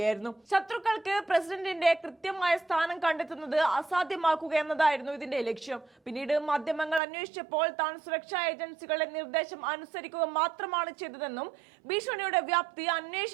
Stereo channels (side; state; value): left; drops out; at 7.0 s